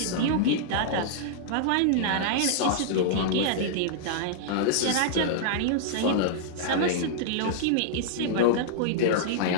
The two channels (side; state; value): both; different; correlation -0.02